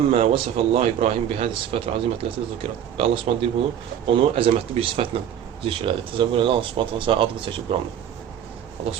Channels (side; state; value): left; quieter; 9.8 dB